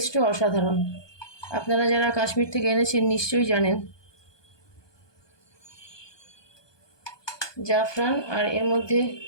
অসাধারণ, আপনারা যারা কাশ্মীর থেকে এনেছেন নিশ্চয়ই জানেন। জাফরান, আর এর মধ্যে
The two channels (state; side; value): late; right; 1.2 ms